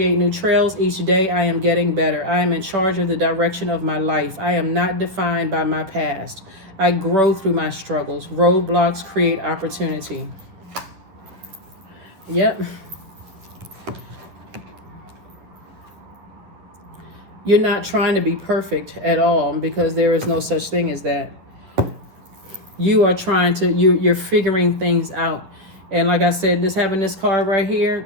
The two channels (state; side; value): late; left; 11 ms